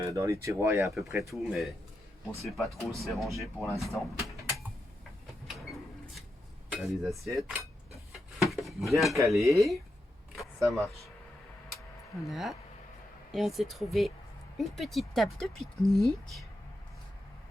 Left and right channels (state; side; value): normal; both; correlation 0.86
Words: les tiroirs il y a à peu près tout, mais on ne sait pas trop où c'est rangé pour l'instant. Là les assiettes. Bien calées. Ça marche. Voilà. Et on s'est trouvé une petite table de pique-nique.